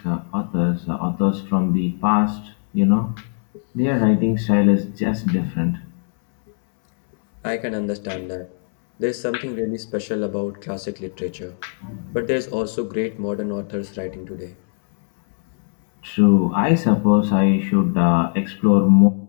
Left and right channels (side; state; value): right; silent; 64 dB below the other